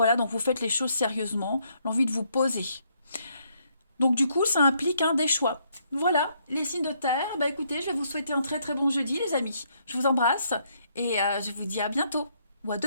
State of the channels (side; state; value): both; inverted; correlation -0.72